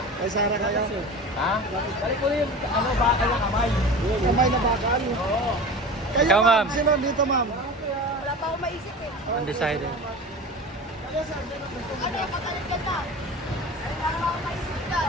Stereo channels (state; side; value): normal; both; correlation 0.33